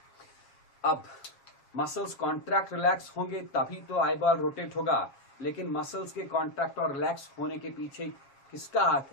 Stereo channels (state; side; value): late; right; 7.3 ms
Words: अब मसल्स कॉन्ट्रैक्ट रिलैक्स होंगे तभी तो आई बॉल रोटेट होगा. लेकिन मसल्स के कॉन्ट्रैक्ट और रिलैक्स होने के पीछे किसका हाथ